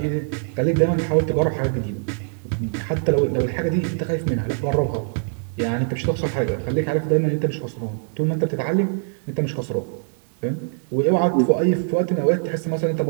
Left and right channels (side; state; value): left; silent; digital silence